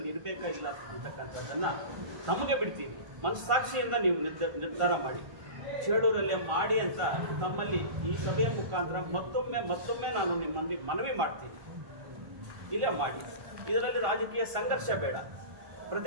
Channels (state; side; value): late; left; 1.5 ms